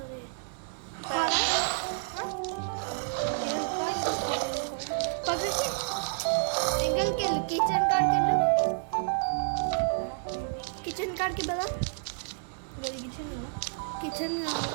ఇంకల్కి వెళ్ళు కిచెన్ కాడికి వెళ్ళు. కిచెన్ కాడికి కదా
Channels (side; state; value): left; silent; digital silence